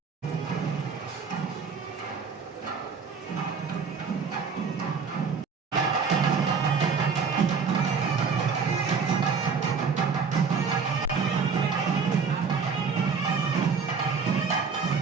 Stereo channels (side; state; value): left; quieter; 5.5 dB